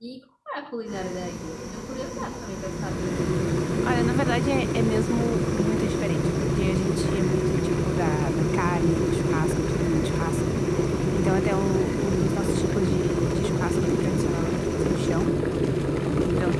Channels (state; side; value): identical; both; correlation 1.00